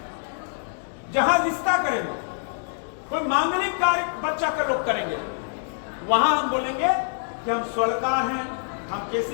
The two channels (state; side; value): silent; right; digital silence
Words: जहां रिश्ता करेंगे, कोई मांगलिक कार्य बच्चा का लोग करेंगे, वहां हम बोलेंगे कि हम स्वर्णकार हैं, हम